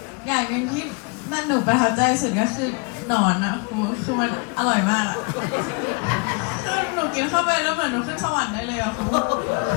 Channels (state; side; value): quieter; right; 33.1 dB